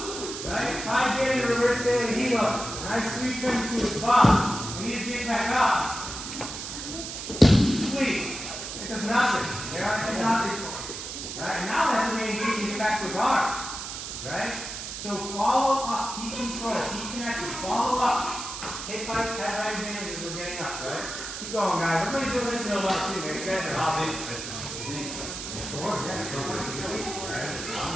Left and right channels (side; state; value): right; noise; hiss, 7 dB below the sound